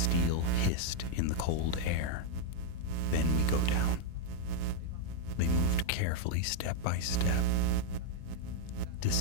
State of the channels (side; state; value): both; different; correlation 0.00